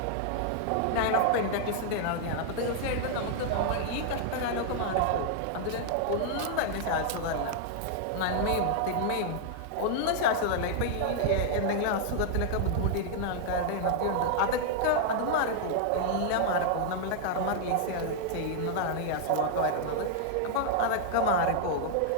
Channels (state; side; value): different; both; correlation -0.01